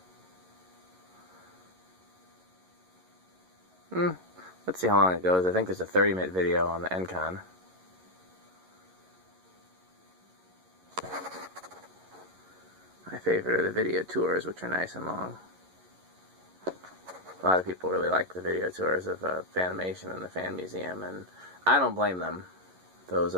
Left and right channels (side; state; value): left; late; 11 ms